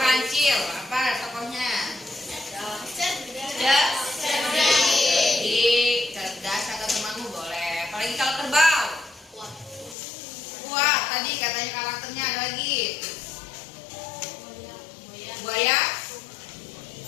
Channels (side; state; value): right; drops out; at 10.0 s